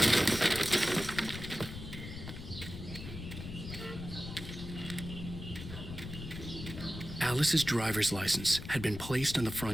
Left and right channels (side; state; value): left; noise; rumble, 10 dB below the sound